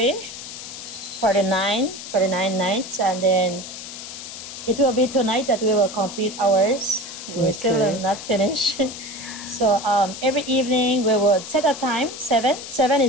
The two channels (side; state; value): left; noise; hiss, 11 dB below the sound